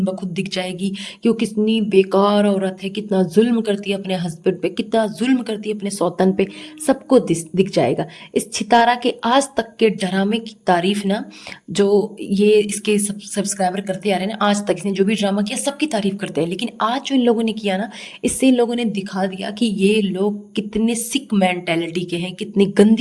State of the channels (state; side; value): identical; both; correlation 1.00